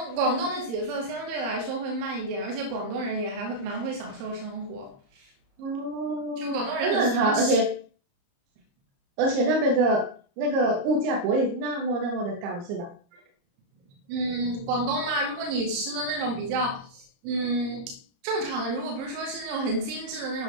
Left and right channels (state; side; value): late; left; 29 ms